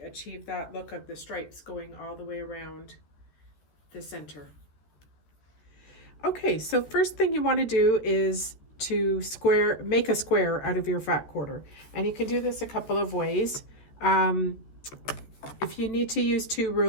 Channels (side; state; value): right; late; 13 ms